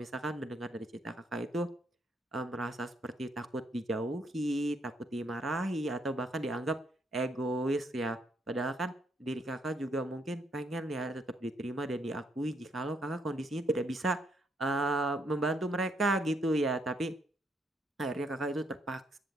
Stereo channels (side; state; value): both; normal; correlation 0.73